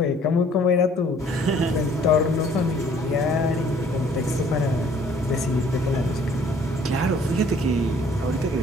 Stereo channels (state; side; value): normal; both; correlation 0.58